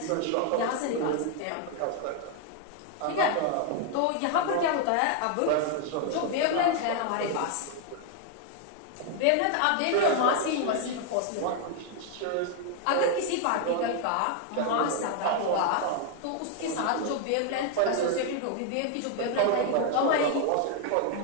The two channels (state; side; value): different; both; correlation 0.00